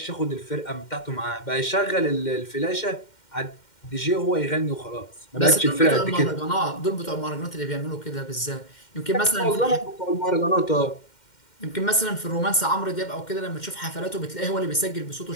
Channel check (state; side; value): late; right; 2.1 ms